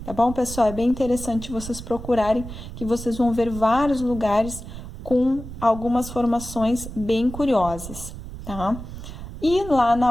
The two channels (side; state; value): right; noise; rumble, 11 dB below the sound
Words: Tá bom, pessoal? É bem interessante vocês procurarem, que vocês vão ver vários lugares com algumas formações bem curiosas, tá? E lá